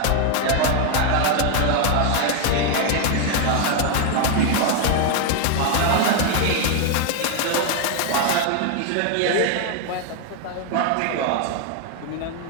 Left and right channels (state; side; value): different; both; correlation 0.00